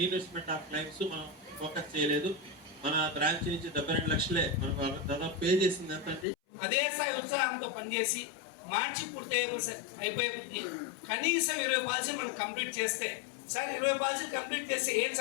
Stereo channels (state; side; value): drops out; right; at 6.2 s